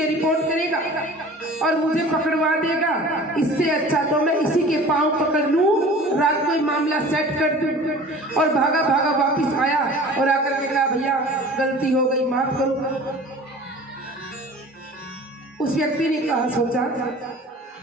रिपोर्ट करेगा और मुझे पकड़वा देगा। इससे अच्छा तो मैं इसी के पांव पकड़ लूं, रात को ही मामला सेट कर दूं। और भागा भागा वापिस आया और आकर के कहा, भैया गलती हो गई, माफ करो। उस व्यक्ति ने कहा, सोचा,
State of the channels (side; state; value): both; normal; correlation 0.42